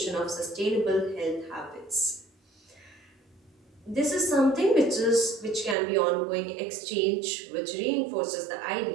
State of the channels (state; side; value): drops out; left; at 5.8 s